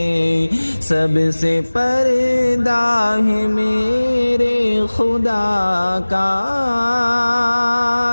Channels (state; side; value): inverted; both; correlation -1.00